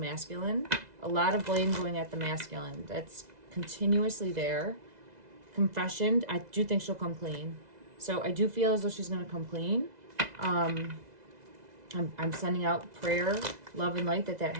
A lot of blame going at the masculine. That's continuously there. Confession, I do think she'll come clean. So I do feel as though she's going to come clean. I'm sending out prayer, love, and light that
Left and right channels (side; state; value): left; late; 2.0 ms